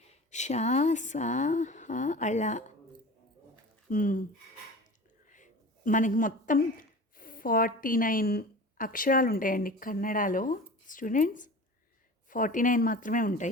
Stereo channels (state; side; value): normal; both; correlation 0.37